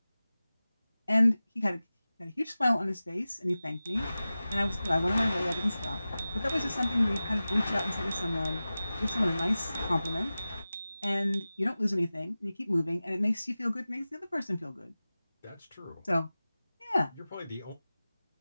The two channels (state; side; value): inverted; both; correlation -0.96